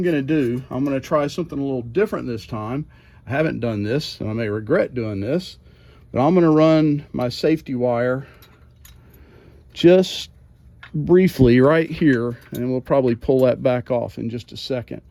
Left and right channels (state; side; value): identical; both; correlation 1.00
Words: going to do, I'm going to try something a little different this time. I haven't done this, and I may regret doing this, but I'm going to run my safety wire just briefly right here, and we'll probably pull that back off in just a second.